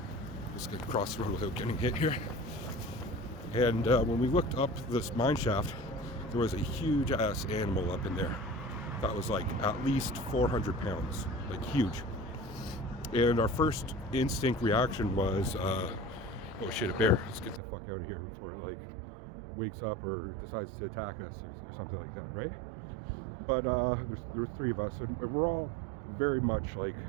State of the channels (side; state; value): left; drops out; at 17.6 s